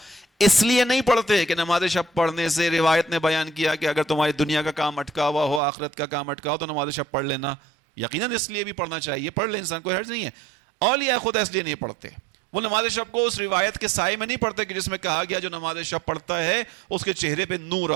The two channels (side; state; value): left; drops out; at 5.6 s